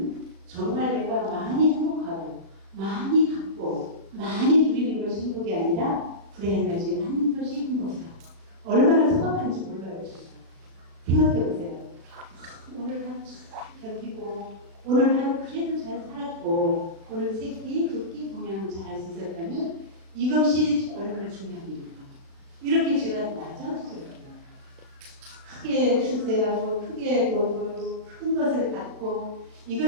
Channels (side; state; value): left; late; 37 ms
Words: 정말 내가 많이 행복하고 많이 갖고 많이 누리는 것이 행복이 아니라 불행하지 않는 것이 행복이다. 얼마나 소박한지 몰라요. 생각해보세요. 오늘 하루 잘 견디고 오늘 하루 그래도 잘 살았고 오늘 세 끼, 두 끼 공양을 잘 할 수 있었다면 이것이 얼마나 중요합니까? 이렇게 제가 낮아지거든요. 크게 출세하고 크게 벌고 큰 것을 갖고